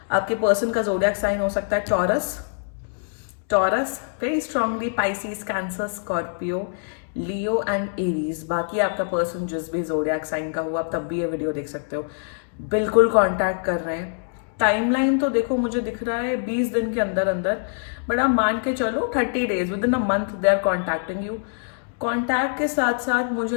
आपके person का zodiac sign हो सकता है Taurus, very strongly Pisces, Cancer, Scorpio, Leo and Aries. बाकी आपका पर्सन जिस भी जोडियाक साइन का हुआ, आप तब भी ये वीडियो देख सकते हो. बिल्कुल कांटेक्ट कर रहे हैं. टाइमलाइन तो देखो, मुझे दिख रहा है 20 दिन के अंदर अंदर, बट आप मान के चलो 30 days, within a month they are contacting you. Contact के साथ साथ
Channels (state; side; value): silent; right; digital silence